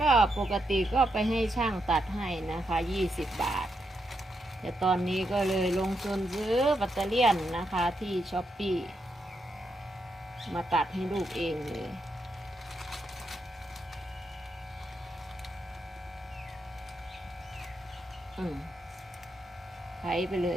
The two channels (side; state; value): both; normal; correlation 0.82